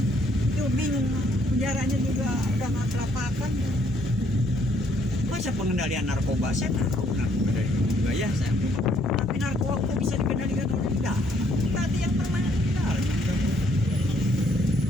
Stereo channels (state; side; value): normal; both; correlation 0.68